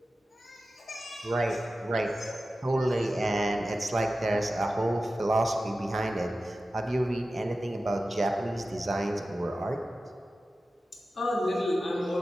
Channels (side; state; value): both; normal; correlation 0.94